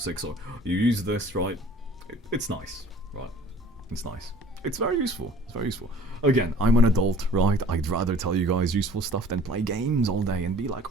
So you use this, right? It's nice, right? It's nice. It's very useful. It's very useful. Again, I'm an adult, right? I'd rather tell you guys useful stuff than play games all day and be like,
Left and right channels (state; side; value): normal; both; correlation 0.50